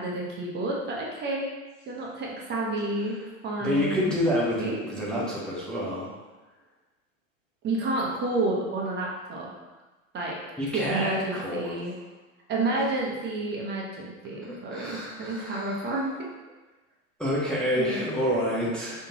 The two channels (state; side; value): normal; both; correlation 0.24